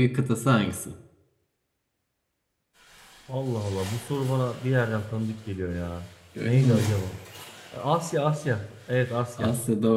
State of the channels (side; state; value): both; identical; correlation 1.00